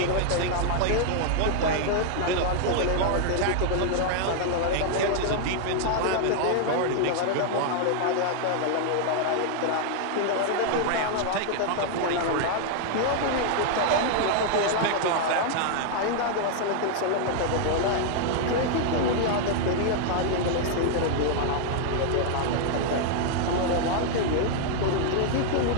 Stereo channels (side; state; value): both; different; correlation -0.01